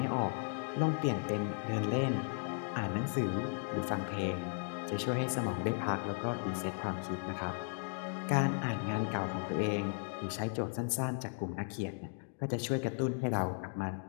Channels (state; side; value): silent; right; 54 dB below the other